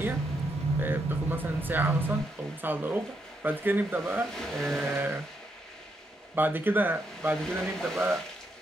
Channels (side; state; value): both; normal; correlation 0.79